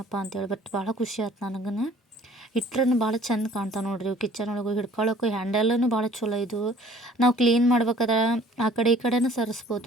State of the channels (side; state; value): both; normal; correlation 0.53